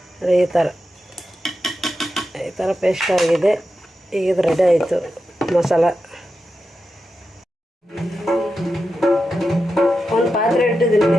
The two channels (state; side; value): normal; both; correlation 0.90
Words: ಈ ಥರ ಪೇಸ್ಟ್ ಆಗಿದೆ. ಈಗ ಇದು ರೆಡಿ ಆಯಿತು ಮಸಾಲ. ಒಂದು ಪಾತ್ರೆ ಇಟ್ಟಿದ್ದೀನಿ.